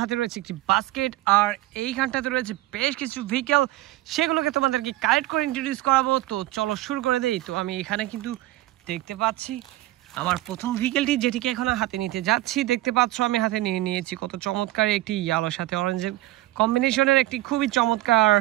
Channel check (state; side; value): quieter; left; 17.0 dB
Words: হাতে রয়েছে একটি বাস্কেট, আর এইখানটাতে রয়েছে বেশ কিছু ভেহিকেল। সেগুলোকে তোমাদেরকে কালেক্ট করে ইন্ট্রোডিউস করাবো। তো চলো শুরু করে দেই। তো আমি এখানে কিন্তু দেখতে পাচ্ছি আমার প্রথম ভেহিকেলটি, যেটিকে এখন হাতে নিতে যাচ্ছি। দেখতে পাচ্ছ আমি হাতে নিয়ে নিয়েছি কত চমৎকার একটি ইয়েলোর সাথে অরেঞ্জের কম্বিনেশনের একটি খুবই চমৎকার